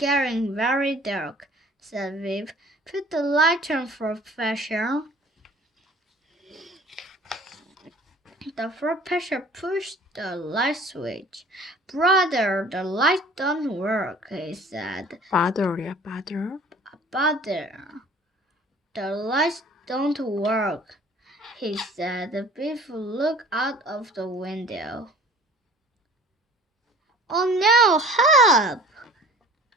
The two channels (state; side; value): normal; both; correlation 0.48